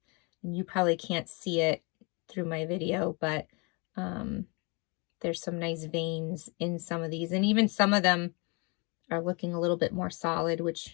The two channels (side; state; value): right; quieter; 30.8 dB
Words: And you probably can't see it through my video, but there's some nice veins in some of these, and even some of them are looking a little bit more solid,